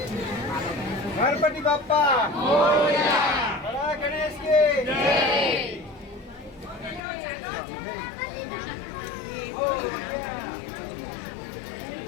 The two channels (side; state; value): right; drops out; at 7.0 s